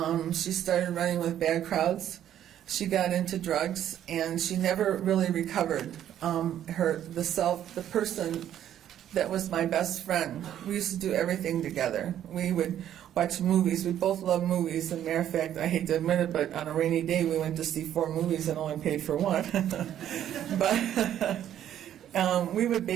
She started running with bad crowds. She got into drugs, and she never really recovered. The person that was my best friend. We used to do everything together. We would watch movies. We both love movies. As a matter of fact, I hate to admit it, but on a rainy day, we went to see 4 movies and only paid for one. But we would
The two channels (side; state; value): left; quieter; 10.9 dB